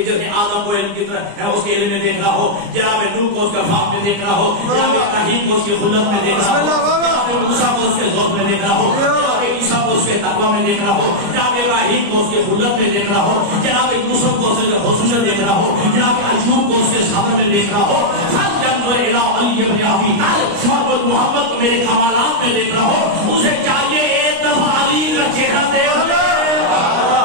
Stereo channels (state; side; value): late; left; 29 ms